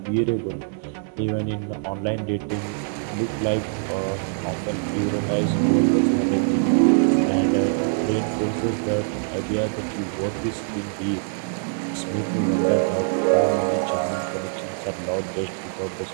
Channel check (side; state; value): left; silent; digital silence